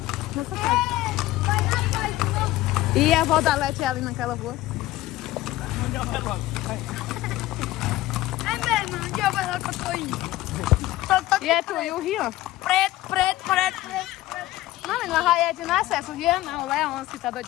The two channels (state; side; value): quieter; right; 16.6 dB